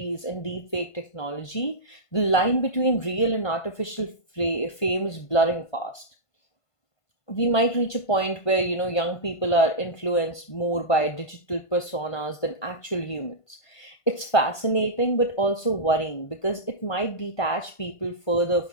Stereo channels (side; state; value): right; late; 1.5 ms